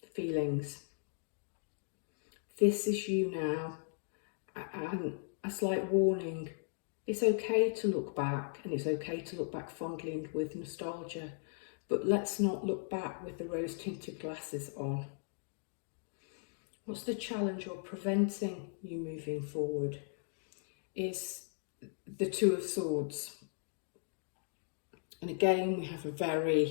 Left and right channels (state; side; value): silent; right; digital silence